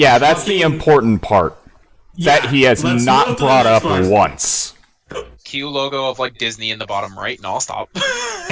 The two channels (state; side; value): identical; both; correlation 1.00